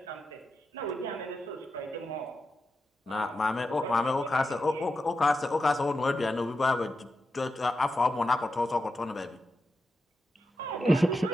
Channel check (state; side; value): normal; both; correlation 0.89